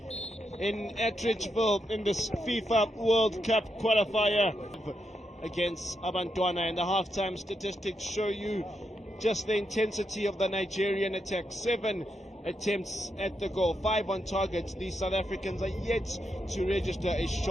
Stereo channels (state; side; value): normal; both; correlation 0.83